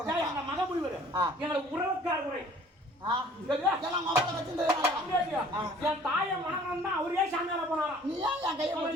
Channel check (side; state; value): both; normal; correlation 0.52